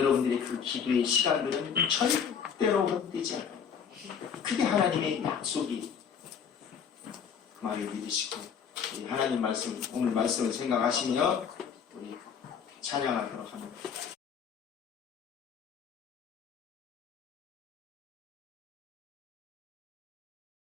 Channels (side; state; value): right; quieter; 7.2 dB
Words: 그 기도의 시간들은 절대로 헛되지 않아요. 그게 하나님의 약속이. 말을 믿으시고 이 하나님 말씀, 오늘 말씀을 생각하시며 우리 찬양하도록 합니다.